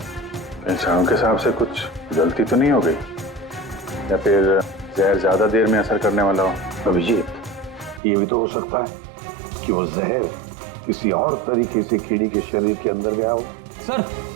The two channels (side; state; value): left; drops out; at 8.0 s